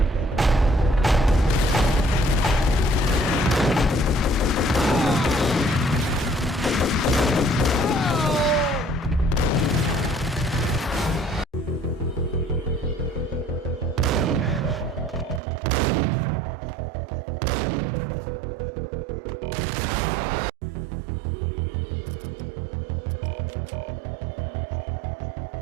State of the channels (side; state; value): left; drops out; at 15.4 s